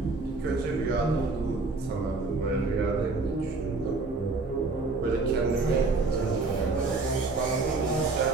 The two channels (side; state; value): left; quieter; 3.6 dB